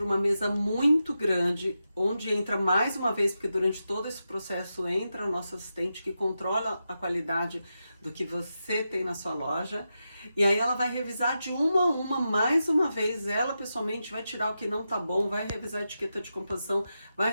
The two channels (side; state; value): both; inverted; correlation -0.89